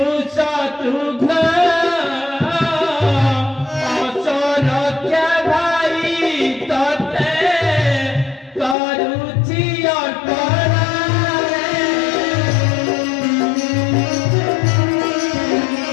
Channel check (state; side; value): drops out; right; at 8.8 s